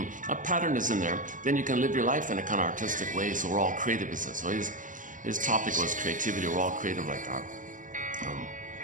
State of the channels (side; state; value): left; late; 0.38 ms